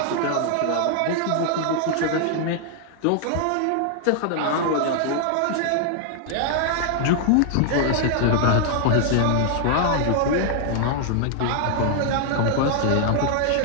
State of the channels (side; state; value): both; different; correlation 0.00